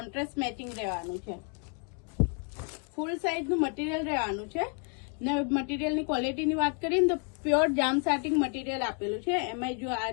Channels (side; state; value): right; quieter; 39.2 dB